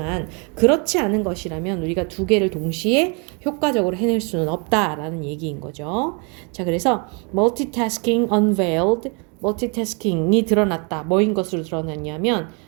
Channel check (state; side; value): quieter; left; 33.9 dB